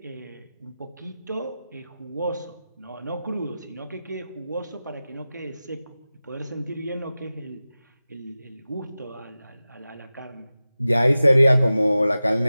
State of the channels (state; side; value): inverted; both; correlation -0.95